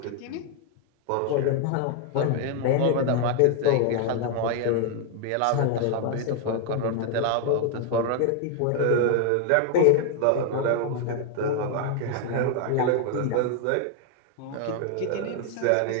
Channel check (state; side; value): different; both; correlation 0.00